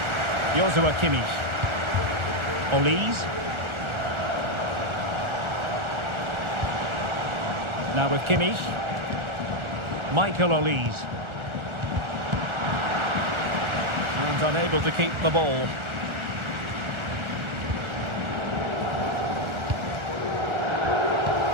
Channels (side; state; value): left; late; 1.4 ms